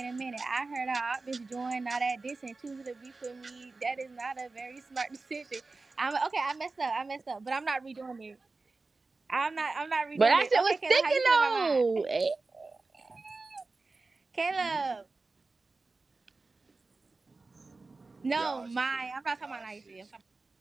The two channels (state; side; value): quieter; left; 3.7 dB